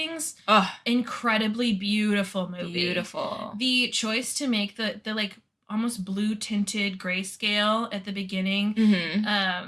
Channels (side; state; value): both; identical; correlation 1.00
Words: Oh, incredibly beautiful movie. beautiful. The choice to make the like almost blue tinted grayscale at the beginning